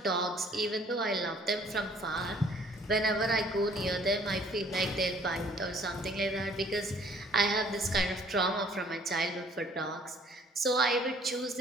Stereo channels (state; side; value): normal; both; correlation 0.58